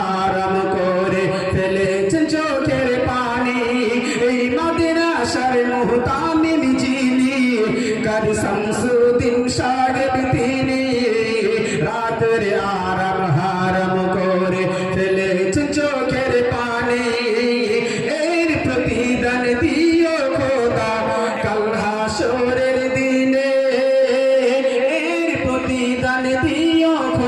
করে ফেলেছেন চোখের পানি এই মাদ্রাসার মুহতামিল যিনি কাজী শামসুদ্দিন সাহেব তিনি রাতের আরাম হারাম করে ফেলেছেন চোখের পানি এর প্রতিদান দিও খোদা কাল হাসরের দিনে এর প্রতিদান দিও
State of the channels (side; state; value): both; identical; correlation 1.00